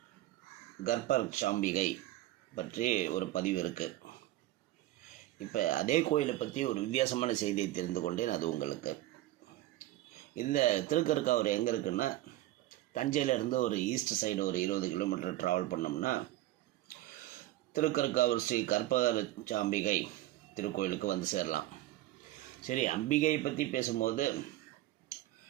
கர்ப்பரட்சாம்பிகை பற்றி ஒரு பதிவு இருக்குது. இப்போ அதே கோயிலை பற்றி ஒரு வித்தியாசமான செய்தியை தெரிந்து கொண்டேன். அது உங்களுக்கு இந்த திருக்கற்காவூர் எங்கே இருக்குன்னா, தஞ்சையிலேருந்து ஒரு ஈஸ்ட் சைடு ஒரு 20 கிலோமீட்டர் ட்ராவல் பண்ணோம்னா திருக்கற்காவூர் ஸ்ரீ கர்ப்பரட்சாம்பிகை திருக்கோயிலுக்கு வந்து சேரலாம். சரி, அம்பிகையை பற்றி பேசும்போது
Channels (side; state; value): left; quieter; 15.5 dB